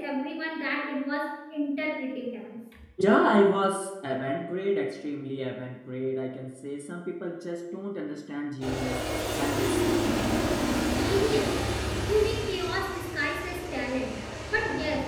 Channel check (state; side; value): identical; both; correlation 1.00